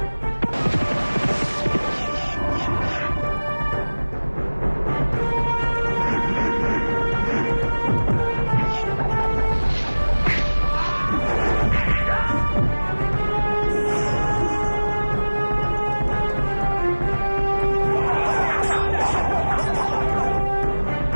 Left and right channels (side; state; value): both; inverted; correlation -1.00